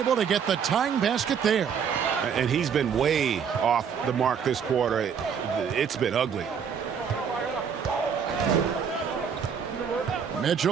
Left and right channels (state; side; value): quieter; left; 7.1 dB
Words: to get the tying basket there. And he's been way off the mark this quarter. It's been ugly.